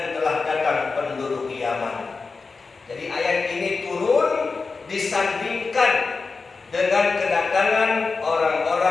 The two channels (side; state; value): right; quieter; 4.4 dB